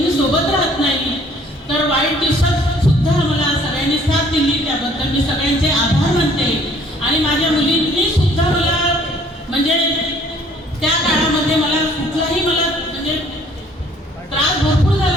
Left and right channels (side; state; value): both; normal; correlation 0.58